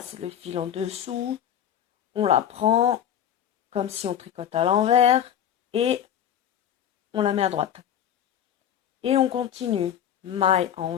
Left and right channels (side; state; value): right; quieter; 9.9 dB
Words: le fil en dessous, on la prend comme si on tricote à l'envers et on la met à droite. Et on continue. Maille